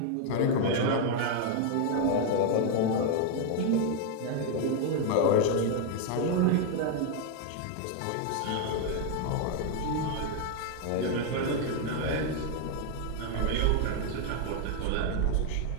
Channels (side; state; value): both; different; correlation 0.01